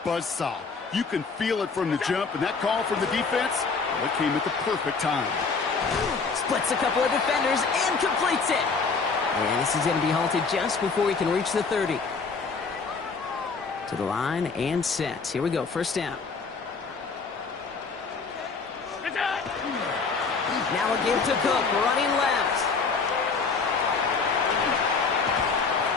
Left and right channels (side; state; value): right; quieter; 4.8 dB